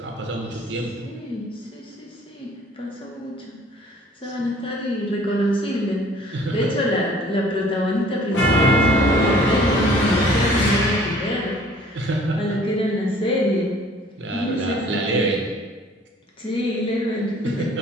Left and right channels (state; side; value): normal; both; correlation 0.54